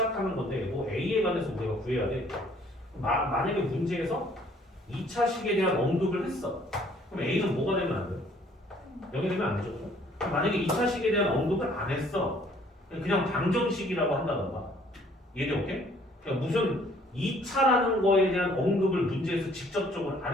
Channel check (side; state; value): both; normal; correlation 0.60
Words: 건데 뭐 A에 관해서 우리가 구해야 돼. 만약에 문제에서 2차식에 대한 언급을 했어. 그럼 A는 뭐가 되면 안 돼? 0이 되면 안 되죠. 만약에 2차식에 대한 언급을 안 했어. 그냥 방정식이라고 한다던가. 이해돼? 오케이? 그러니까 무슨 2차라는 거에 대한 언급을 문제에서 직접적으로 안